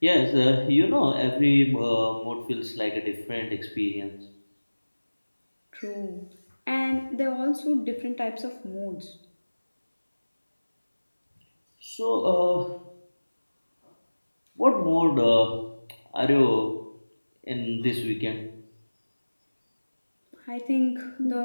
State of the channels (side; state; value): both; inverted; correlation -1.00